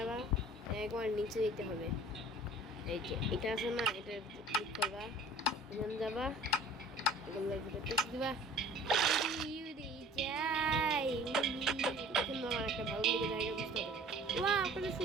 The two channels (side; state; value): both; normal; correlation 0.47